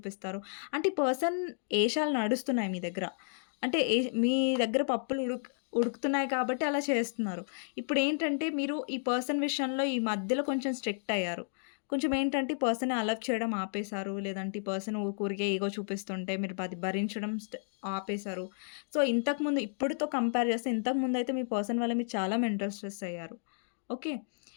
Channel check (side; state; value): right; silent; digital silence